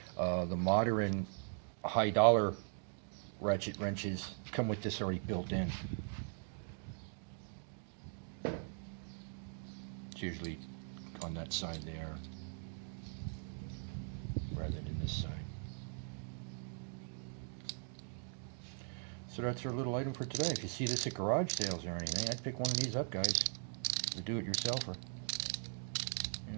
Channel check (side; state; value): left; silent; 51 dB below the other